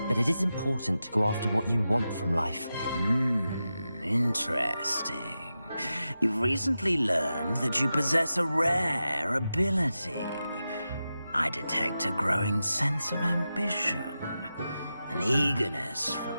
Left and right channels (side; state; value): both; inverted; correlation -0.91